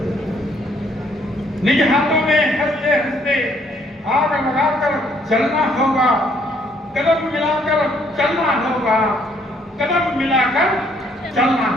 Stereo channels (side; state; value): both; normal; correlation 0.66